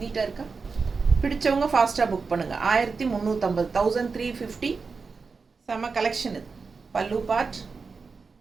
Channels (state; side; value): quieter; left; 4.8 dB